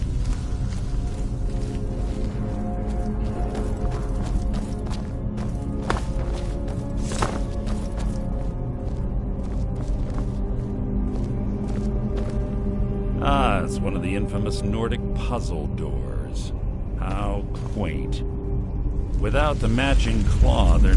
Ah, it's one of the infamous Nordic puzzle doors. How quaint. Without the matching claw, they're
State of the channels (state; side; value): identical; both; correlation 1.00